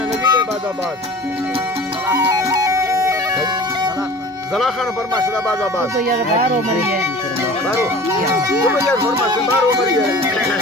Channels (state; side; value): normal; both; correlation 0.42